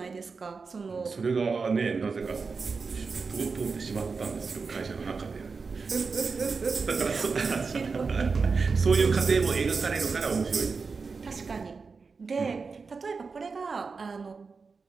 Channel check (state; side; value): quieter; left; 4.7 dB